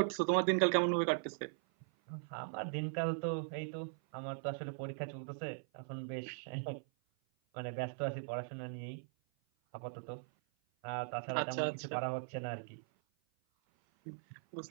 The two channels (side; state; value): left; silent; 51 dB below the other